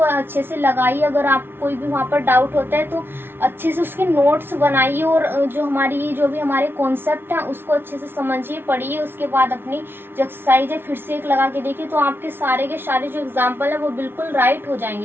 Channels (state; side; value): late; left; 0.11 ms